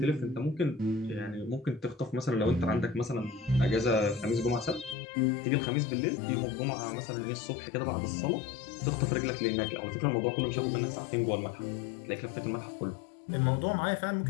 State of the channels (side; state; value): right; drops out; at 5.0 s